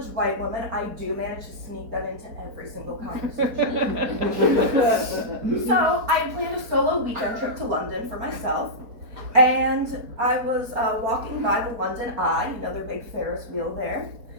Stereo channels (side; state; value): left; late; 4.5 ms